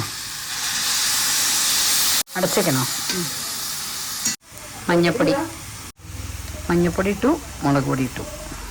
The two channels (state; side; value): identical; both; correlation 1.00